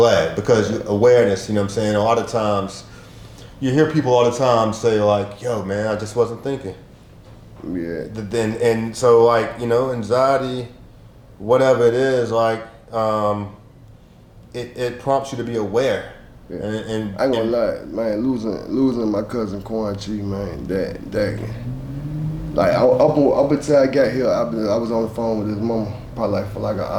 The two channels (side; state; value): both; identical; correlation 1.00